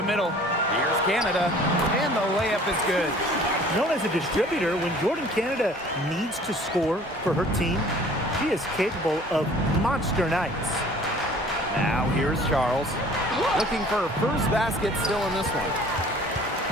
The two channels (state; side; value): normal; both; correlation 0.50